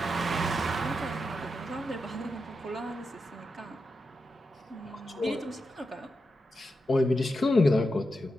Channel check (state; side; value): normal; both; correlation 0.87